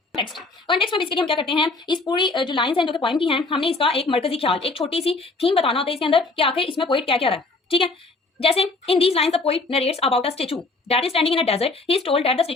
कॉन्टेक्स्ट में बेसिकली हम क्या करते हैं इस पूरी जो लाइंस हैं जो कि पॉइंट की हैं हमने इसका एक मरकजी ख्याल एक छोटी सी थीम बताना होता है इसके अंदर कि आखिर इसमें पोइट क्या क्या रहा है. ठीक है, जैसे in these lines the poet narrates about a statue that is standing in a desert. He is told that the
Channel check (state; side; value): quieter; right; 3.5 dB